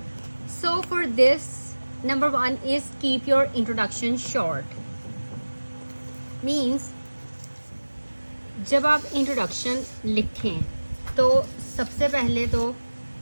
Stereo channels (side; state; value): both; inverted; correlation -1.00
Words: So for this, number 1 is keep your introduction short. Means जब आप introduction लिखें तो सबसे पहले तो